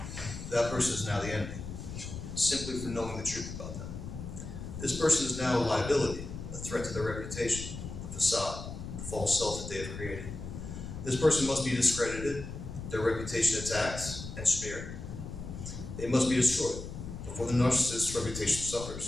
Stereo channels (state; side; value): noise; left; rumble, 9 dB below the sound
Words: that person is now the enemy, simply for knowing the truth about them. This person is now a liability, a threat to their reputation, the facade, the false self that they have created. This person must be discredited, their reputation attacked and smeared. They must be destroyed before the narcissist's reputation